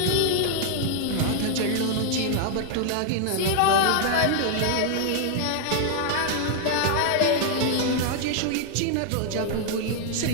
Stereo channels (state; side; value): different; both; correlation 0.00